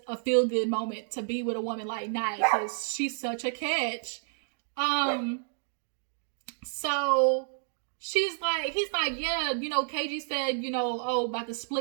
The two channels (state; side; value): silent; left; digital silence